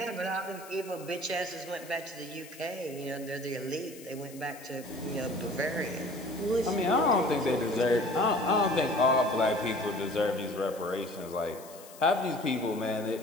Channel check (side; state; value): left; noise; hiss, 19 dB below the sound